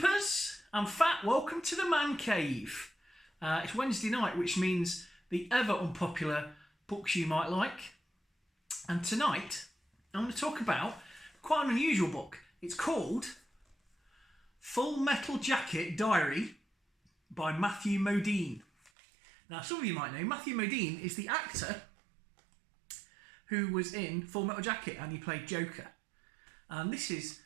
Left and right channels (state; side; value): drops out; left; at 18.9 s